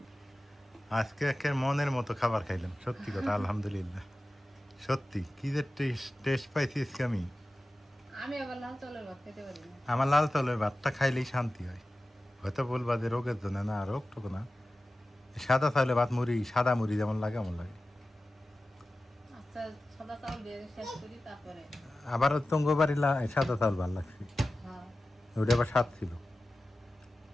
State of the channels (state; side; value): normal; both; correlation 0.95